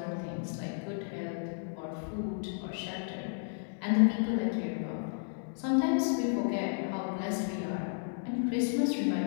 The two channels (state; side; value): silent; right; digital silence